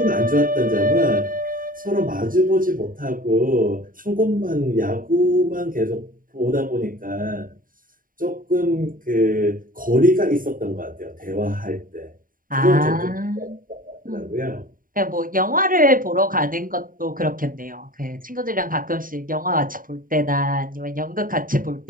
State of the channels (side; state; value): left; late; 0.40 ms